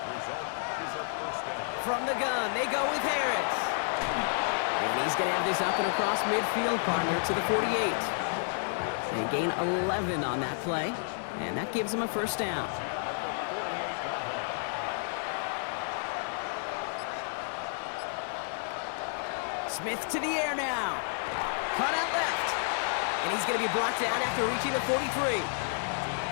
From the gun, they go with Harris. And he's going to have this up and across midfield, partner, to the 48. They gain 11 on that play, and that gives them a first down. Smith to the air now. Cut out left. And he's going to be brought down after reaching the 43.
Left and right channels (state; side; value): silent; right; 57 dB below the other